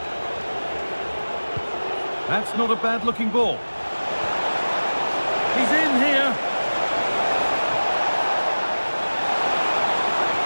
That's not a bad-looking ball. He's in here.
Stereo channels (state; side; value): inverted; both; correlation -1.00